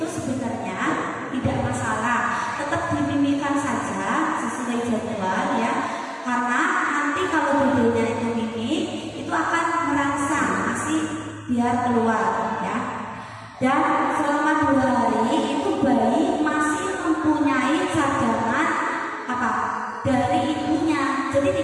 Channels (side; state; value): both; identical; correlation 1.00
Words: sebenarnya tidak masalah. Tetap dimimikan saja sesuai jadwal ya. Karena nanti kalau bedanya itu mimi, itu akan merangsang ASI biar keluar ya. Dan selama 2 hari itu bayi masih mempunyai cadangan dari ibunya. Jadi